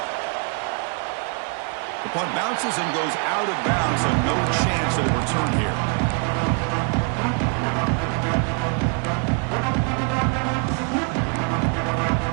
The punt bounces and goes out of bounds, so no chance of a return here.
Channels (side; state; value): left; quieter; 37.8 dB